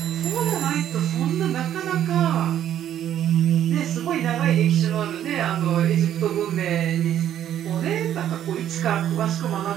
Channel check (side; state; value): left; quieter; 10.8 dB